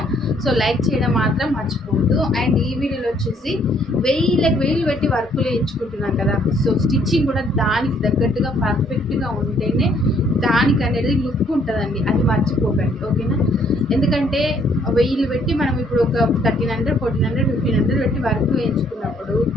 సో లైక్ చేయడం మాత్రం మర్చిపోవద్దు. అండ్ ఈ వీడియోలో వచ్చేసి వేలు పెట్టి వర్కులు ఎంచుకుంటున్నాను కదా. సో స్టిచ్చింగ్ కూడా దానికి తగ్గట్టుగా పర్ఫెక్ట్గా ఉంటేనే దానికి అనేది లుక్ ఉంటుందండి, అది మర్చిపోకండి ఓకేనా. ఎందుకంటే వెయ్యిలు పెట్టి మనం ఇప్పుడు ఒక 1300, 1400, 1500 పెట్టి వర్క్ వేయించుకున్నప్పుడు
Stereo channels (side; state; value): both; normal; correlation 0.65